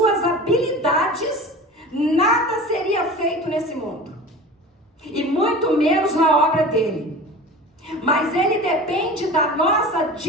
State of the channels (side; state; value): both; normal; correlation 0.36